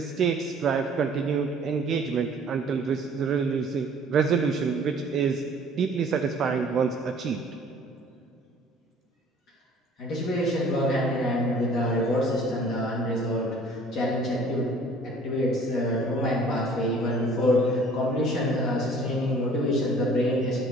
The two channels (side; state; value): both; normal; correlation 0.52